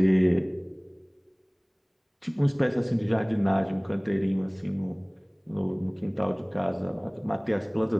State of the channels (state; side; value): identical; both; correlation 1.00